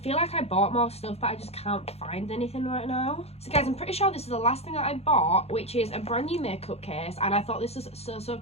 like I bought more stuff, but I just can't find anything right now. So guys, I'm pretty sure this is the last thing that I bought, which is a brand new makeup case, and I thought this was so, so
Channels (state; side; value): late; right; 0.30 ms